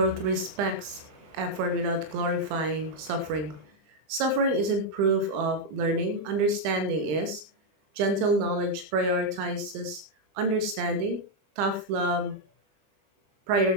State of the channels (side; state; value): left; late; 20 ms